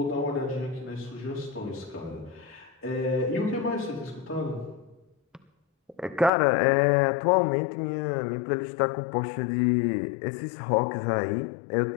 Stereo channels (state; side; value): drops out; right; at 6.3 s